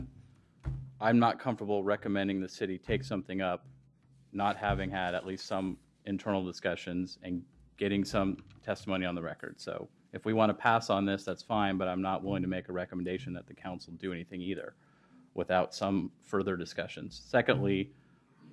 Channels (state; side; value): identical; both; correlation 1.00